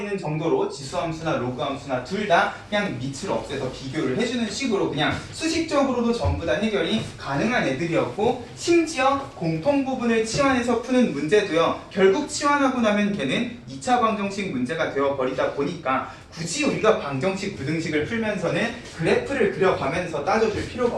정도로 지수함수나 로그함수나 둘 다 그냥 밑을 없애서 비교를 해주는 식으로 그냥 수식적으로도 전부 다 해결이 가능한 애들이었고, 심지어 공통부분을 치환해서 푸는 문제도요, 결국 치환하고 나면 걔는 2차 방정식 문제가 되어버리다 보니까 굳이 우리가 방정식, 부등식을 풀면서는 그래프를 그려가면서 따져줄 필요가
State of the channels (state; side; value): identical; both; correlation 1.00